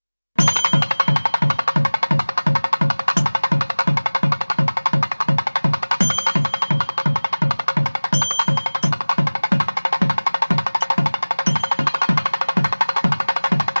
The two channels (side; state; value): both; inverted; correlation -1.00